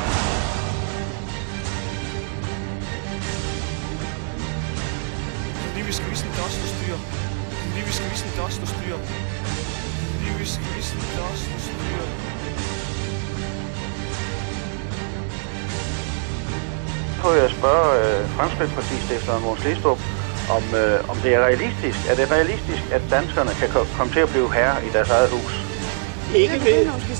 Fordi vi skal vise en dust og styre. Fordi vi skal vise en dust og styre. Fordi vi skal vise en dust og styre. Så jeg spørge Fremskridtspartistifteren Mogens Glistrup, om det er realistisk. Er det realistisk, at danskerne kan komme til at blive herre i deres eget hus? Ikke ved.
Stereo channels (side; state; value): left; silent; 63 dB below the other